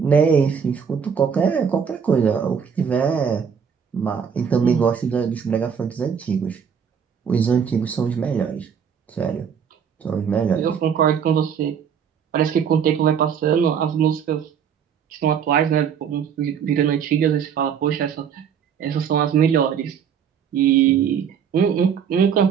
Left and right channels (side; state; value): left; quieter; 7.4 dB